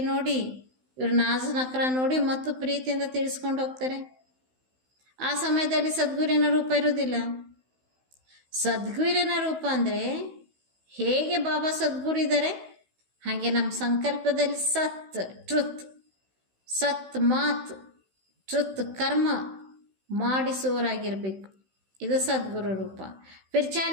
ನೋಡಿ, ಇವ್ರ ನಾಜ್ ನಕ್ರ ನೋಡಿ ಮತ್ತು ಪ್ರೀತಿಯಿಂದ ತಿಳಿಸ್ಕೊಂಡು ಹೋಗ್ತಾರೆ. ಆ ಸಮಯದಲ್ಲಿ ಸದ್ಗುರಿನ ರೂಪ ಇರೋದಿಲ್ಲ. ಸದ್ಗುರಿನ ರೂಪ ಅಂದರೆ ಹೇಗೆ ಬಾಬಾ ಸದ್ಗುರು ಇದ್ದಾರೆ ಹಾಗೆ ನಮ್ಮ ಸಂಕಲ್ಪದಲ್ಲಿ ಸತ್ ಟ್ರುತ್, ಸತ್ ಮಾತ್, ಟ್ರುತ್ ಕರ್ಮ ಮಾಡಿಸುವವರಾಗಿರಬೇಕು. ಇದು ಸದ್ಗುರು ರೂಪ. ಫಿರ್ ಚಾಹೆ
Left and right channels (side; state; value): left; late; 16 ms